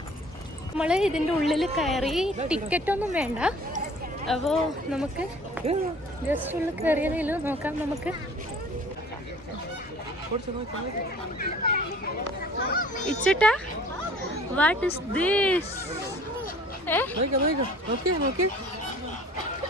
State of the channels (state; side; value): normal; both; correlation 0.50